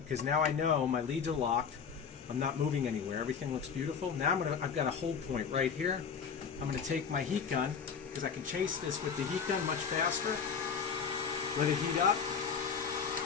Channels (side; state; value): right; quieter; 6.5 dB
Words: now I know my leads are locked. I'm not moving anywhere. Everything looks beautiful. Now I've got a hold point right here. I'm going to take my heat gun because I can chase this with the heat gun much faster. Let it heat up.